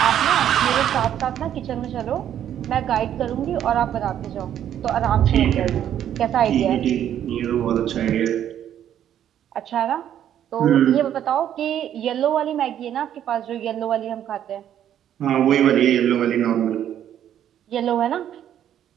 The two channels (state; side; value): quieter; left; 10.4 dB